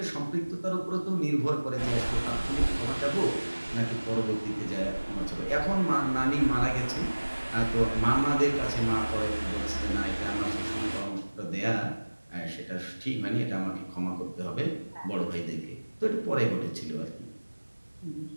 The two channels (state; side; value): inverted; both; correlation -1.00